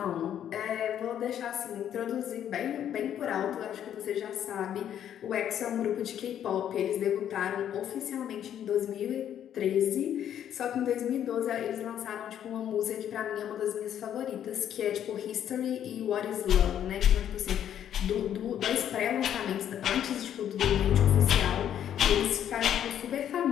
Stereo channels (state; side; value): quieter; right; 10.1 dB